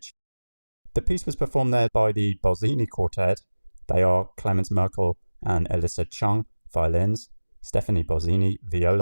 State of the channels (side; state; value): both; inverted; correlation -1.00